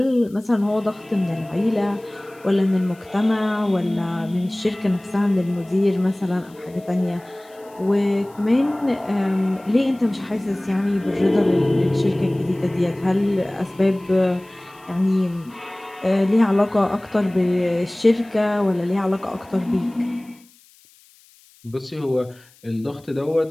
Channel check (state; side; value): noise; left; hiss, 28 dB below the sound